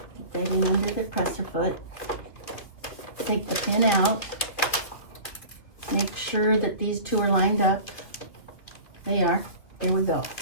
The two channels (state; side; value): late; right; 2.7 ms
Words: Get that in under the presser foot. Take the pin out. Make sure that these two are lined up. They are. Here we go.